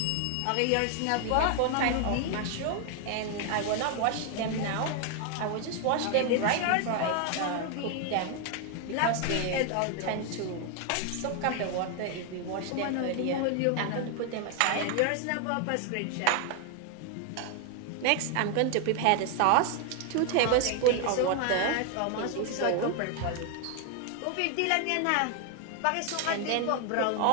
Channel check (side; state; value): both; different; correlation 0.01